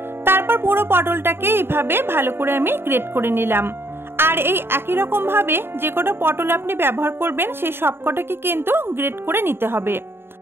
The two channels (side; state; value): left; late; 0.11 ms